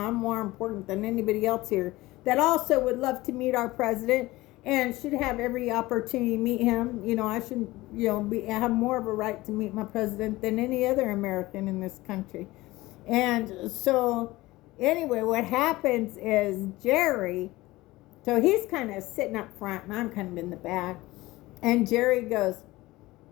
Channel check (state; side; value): quieter; right; 19.2 dB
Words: I'm more important than anybody else here that also would love to meet our president and should have every opportunity to meet him. I should, have more of a right to meet my president than any other American in this country. And so anyway, what happens is Jerry, so he's kind of sitting up front and I'm kind of in the back. And Jerry goes,